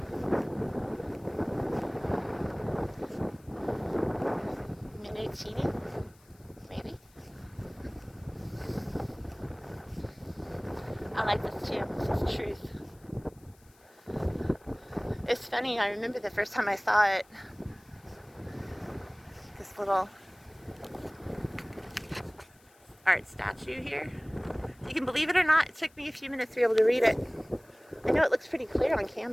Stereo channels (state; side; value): noise; left; hiss, 29 dB below the sound